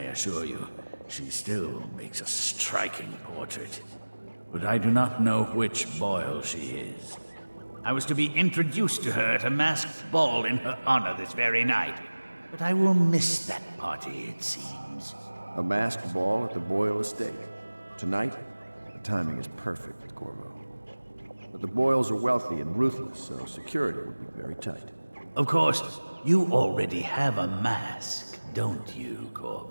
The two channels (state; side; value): inverted; both; correlation -1.00